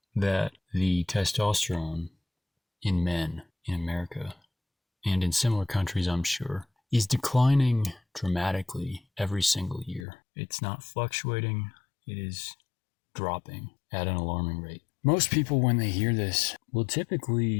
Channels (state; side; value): drops out; right; at 10.1 s